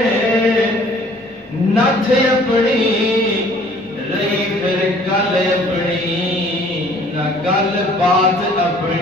نتھ اپنی رہی پھر گل اپنی نہ گل بات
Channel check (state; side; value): normal; both; correlation 0.55